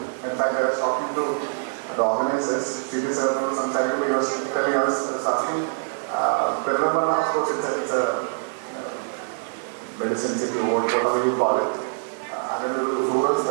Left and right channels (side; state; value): left; silent; 62 dB below the other